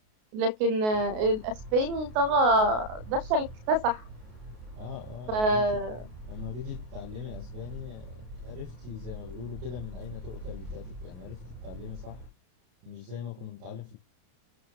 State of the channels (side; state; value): left; late; 33 ms